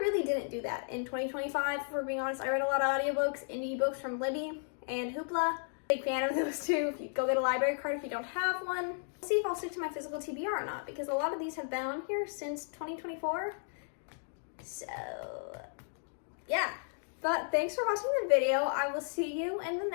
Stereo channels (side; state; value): right; silent; digital silence